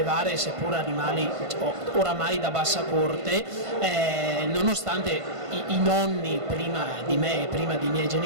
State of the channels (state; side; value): late; left; 1.5 ms